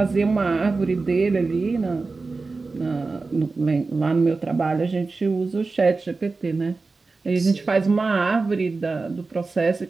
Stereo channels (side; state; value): left; quieter; 3.9 dB